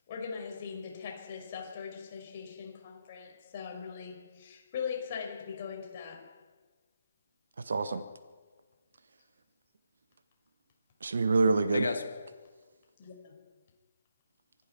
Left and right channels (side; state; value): both; inverted; correlation -0.84